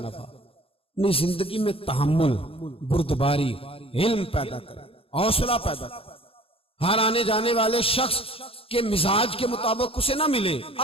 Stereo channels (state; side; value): late; right; 0.27 ms